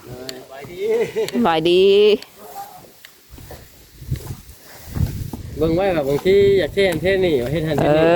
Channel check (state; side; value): identical; both; correlation 1.00